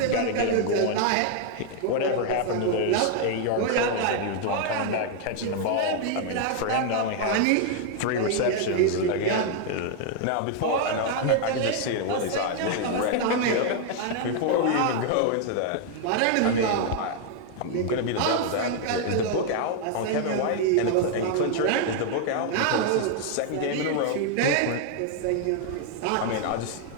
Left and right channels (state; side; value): different; both; correlation 0.00